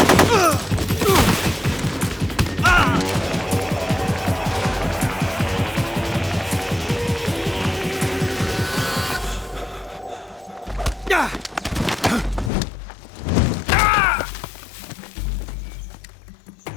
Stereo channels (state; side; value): drops out; right; at 12.5 s